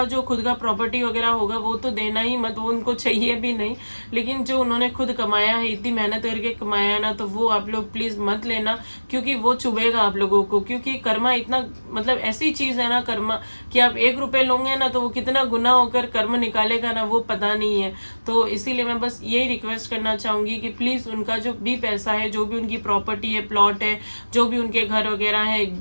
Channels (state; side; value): inverted; both; correlation -1.00